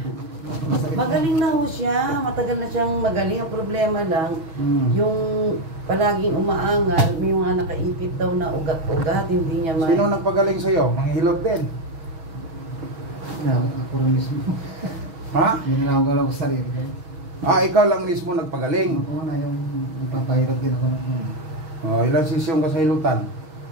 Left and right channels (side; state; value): left; late; 6.3 ms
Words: Magaling na ho siya. Matagal na siyang magaling. Ang problema lang, yung palaging umaangal, may mga nakaipit daw na ugat-ugat. Hindi niya Sino nagpagaling sa'yo? Mga hilot din? Ako rin mismo. Ha? Ginagawa ko sa sarili ko. Ikaw lang mismo nagpagaling? Oo na, yung nagpapahirap din ako ng ilang sesyon ka sa hilutan?